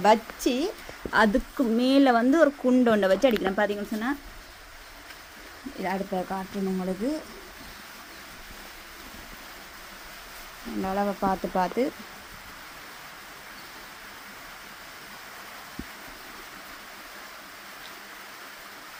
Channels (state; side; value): identical; both; correlation 1.00